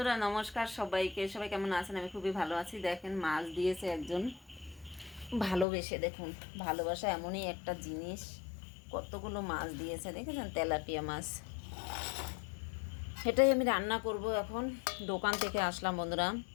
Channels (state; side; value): drops out; right; at 5.7 s